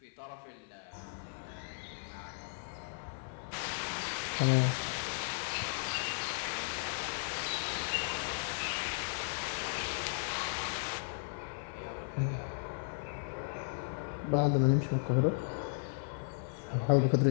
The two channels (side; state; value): right; silent; 54 dB below the other